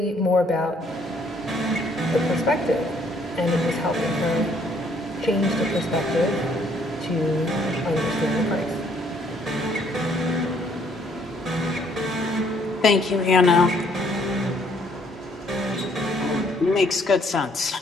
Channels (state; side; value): normal; both; correlation 0.65